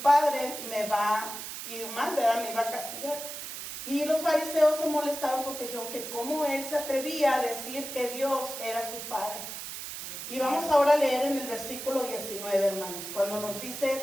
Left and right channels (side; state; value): right; noise; hiss, 8 dB below the sound